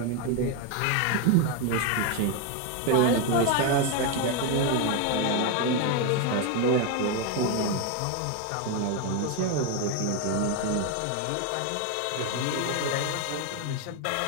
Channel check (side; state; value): both; different; correlation 0.01